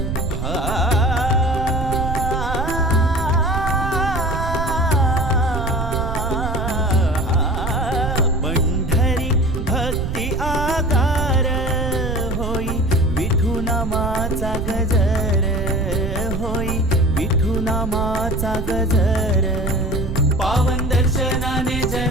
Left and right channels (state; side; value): noise; right; rumble, 4 dB below the sound